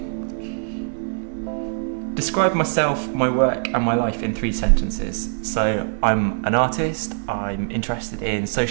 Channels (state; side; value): silent; left; digital silence